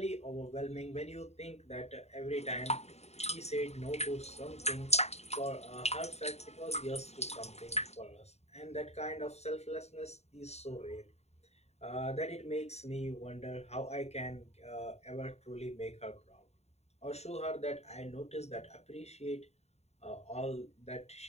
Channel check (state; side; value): late; right; 0.31 ms